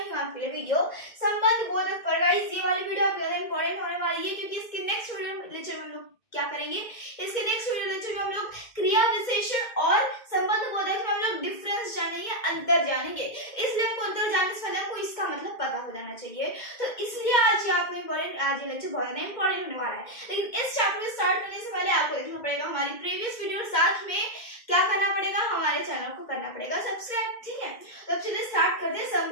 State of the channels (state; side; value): late; right; 2.1 ms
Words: हूं आपके लिए वीडियो संबंध बोधक पर। गाइस ये वाली वीडियो बहुत इंपॉर्टेंट होने वाली है क्योंकि इसके नेक्स्ट वीडियो लेक्चर में हम लोग क्या करेंगे, इसके नेक्स्ट वीडियो लेक्चर में हम लोग क्रिया विशेषण और संबंध बोधक में हम लोग डिफरेंस जानेंगे, अंतर जानेंगे। इसलिए हमको अंतर जानने से पहले हमको इसका मतलब पता हो जाना चाहिए। तो इसलिए आज आपको इंपॉर्टेंट, आज ये लेक्चर बहुत इंपॉर्टेंट होने वाला है। लेकिन इस चैप्टर को स्टार्ट करने से पहले आपको देखना पड़ेगा हमारी प्रीवियस वीडियो, साथ में क्या करना पड़ेगा, हमारे चैनल को करना पड़ेगा सब्सक्राइब। ठीक है, तो अब चलिए स्टार्ट करते हैं।